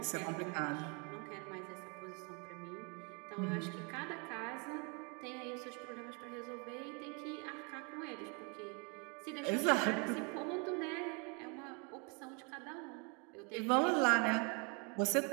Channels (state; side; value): quieter; left; 33.8 dB